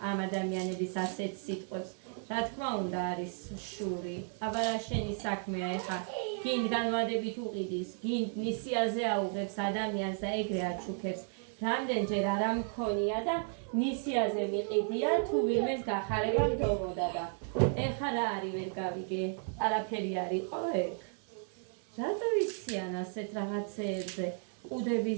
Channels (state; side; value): silent; left; 55 dB below the other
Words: ამ ადამიანების ასეთ სიტყვებს, რა თქმა უნდა არის შური. აბა რა შენი საქმეა ეხა გინ განვადებით უყიდის, გინ ნისიაზე აუღებს ადამიანს და ეგრე აჩუქებს. რამდენჯერ არ ამქონია და ნისიაზე მიყიდია თუ ვინმეს გახარება მდომოდა და ეხა რა არის ვერ გავიგე, არაფერი არ იყო ეგ. რატო იციან ასეთ რაღაცეებზე?